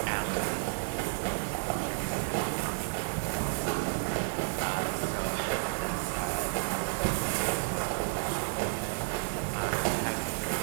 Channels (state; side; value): silent; left; digital silence